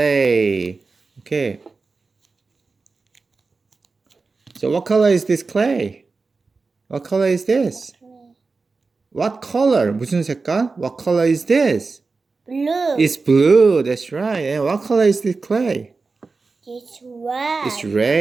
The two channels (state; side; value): quieter; left; 4.1 dB